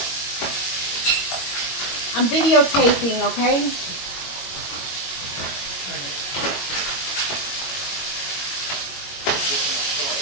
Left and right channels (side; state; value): right; late; 21 ms